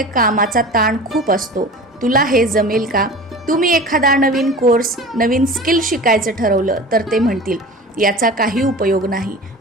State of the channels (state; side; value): normal; both; correlation 0.37